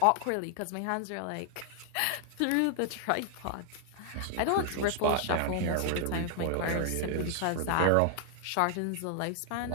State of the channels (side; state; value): both; different; correlation 0.00